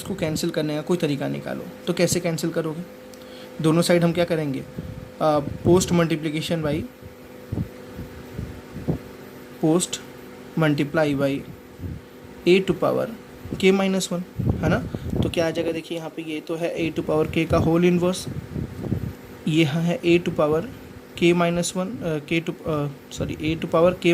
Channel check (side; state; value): both; identical; correlation 1.00